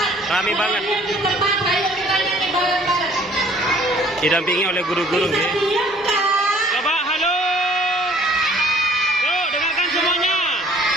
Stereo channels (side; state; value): both; normal; correlation 0.56